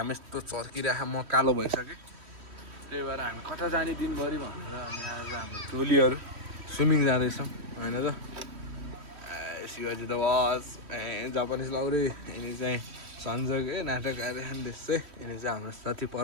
यस्तो चर्किरहेको, म कालो भइसकेँ। त्यही भएर हामी कता जाने दिनभरि भनेर अनि आज हाम्रो टोलीहरू स्विमिङ जाँदैछौँ होइन त। शिवाजी द वास जापानिज लौरी, यिनी चाहिँ सञ्जक नाटक आइरहेको देशै, यिनी चाहिँ हाम्रो साथी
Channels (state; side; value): late; left; 3.1 ms